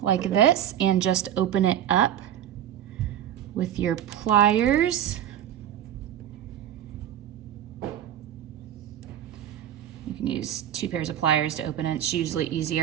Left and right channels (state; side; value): quieter; left; 10.9 dB